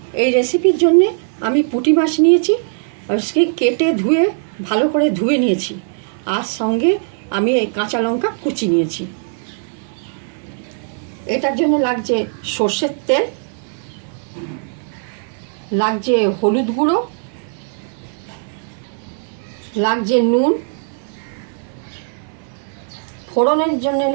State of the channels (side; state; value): left; silent; 64 dB below the other